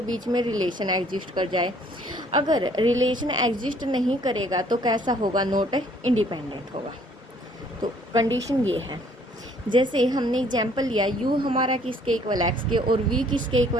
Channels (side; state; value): both; normal; correlation 0.60